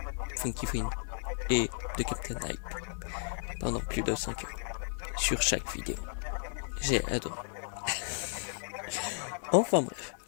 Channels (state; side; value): silent; right; digital silence